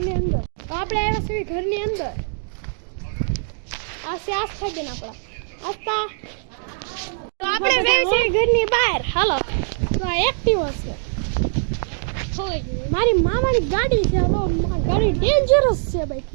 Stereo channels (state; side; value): silent; left; digital silence